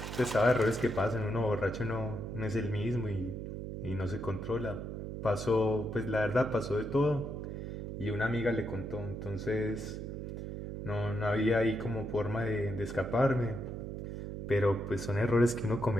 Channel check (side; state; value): right; noise; hum, 6 dB below the sound